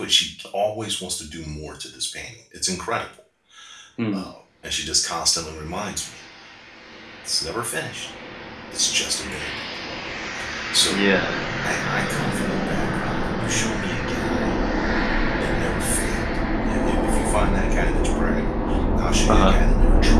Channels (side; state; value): both; identical; correlation 1.00